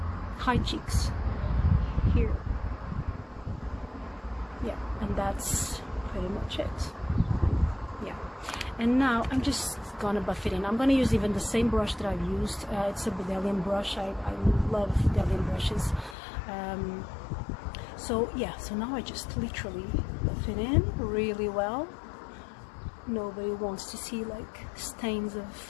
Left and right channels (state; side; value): drops out; right; at 16.2 s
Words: high cheeks here. Yeah, and that's pretty much it. Yeah, and now I'm just gonna buff it in. I'm gonna use even the same brush that I've used. It's a Bedelian brush. I love Bedelian brushes. So yeah, so now I just literally buff it in really well. Nobody wants to see like stains